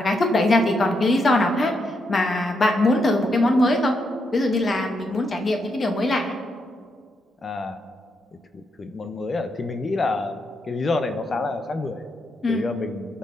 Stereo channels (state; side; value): normal; both; correlation 0.81